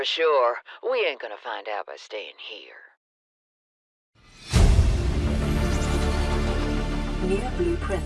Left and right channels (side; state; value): both; identical; correlation 1.00